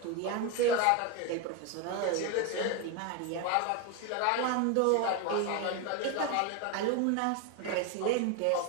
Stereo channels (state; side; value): different; both; correlation 0.02